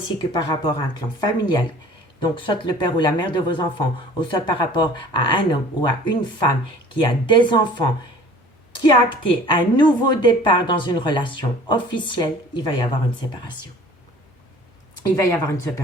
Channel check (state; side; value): normal; both; correlation 0.48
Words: que par rapport à un clan familial, donc soit le père ou la mère de vos enfants, ou soit par rapport à un homme ou à une femme qui a des enfants, qui a acté un nouveau départ dans une relation officielle, il va y avoir une séparation. il va y avoir une